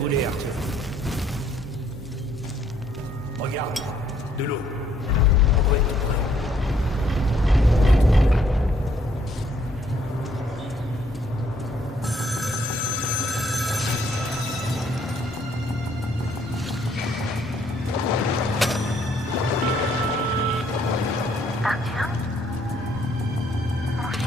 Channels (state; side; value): normal; both; correlation 0.67